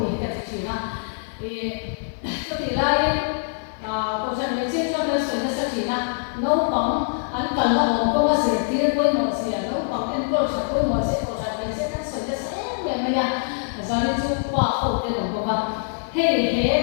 cái gì na, có thể là câu chuyện về chiếc cho nên sự nó sẽ na, nấu bóng, ăn cần là bóng có sự tiền quên một gì, nấu bóng ăn có sự quên một gì, câu chuyện về chiếc nó sự nó sẽ về mà ya. Zani chu pa ho te dong boka he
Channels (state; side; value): silent; right; digital silence